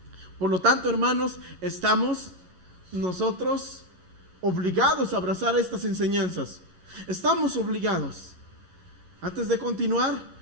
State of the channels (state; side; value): late; left; 11 ms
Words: Por lo tanto, hermanos, estamos nosotros obligados a abrazar estas enseñanzas. Estamos obligados. Antes de continuar,